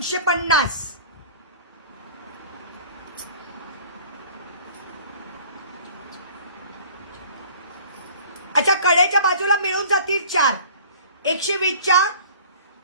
अच्छा, कडेच्या बाजूला मिळून जातील 4. 120च्या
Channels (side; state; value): both; inverted; correlation -0.48